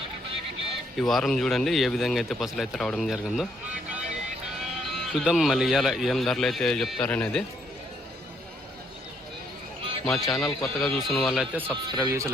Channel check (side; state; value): both; normal; correlation 0.71